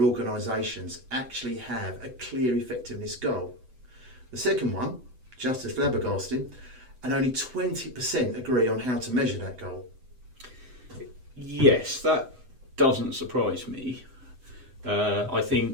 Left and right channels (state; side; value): late; left; 7.9 ms